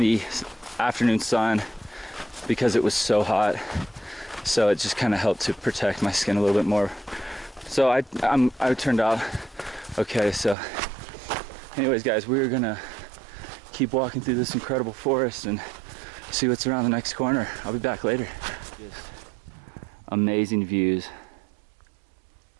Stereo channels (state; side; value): drops out; left; at 10.6 s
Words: afternoon sun because it was so hot. So it just kind of helped to protect my skin a little bit more. So I turned out okay. So anyways, guys, we're gonna keep walking through this incredible forest and see what's around the next corner. I'll be back later. Just amazing views.